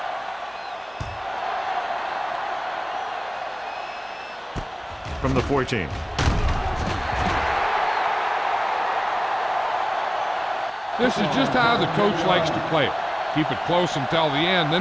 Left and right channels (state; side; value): identical; both; correlation 1.00